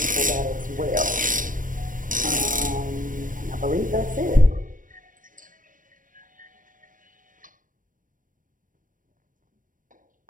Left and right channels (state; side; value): late; left; 0.39 ms